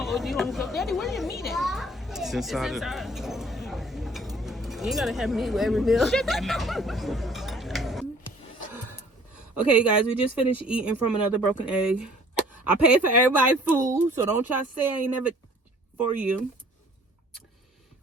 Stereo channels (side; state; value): both; normal; correlation 0.54